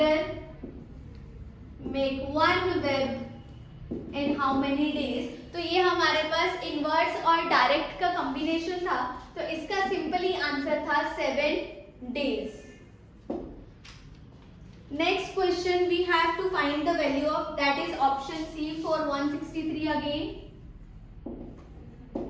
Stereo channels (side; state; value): both; identical; correlation 1.00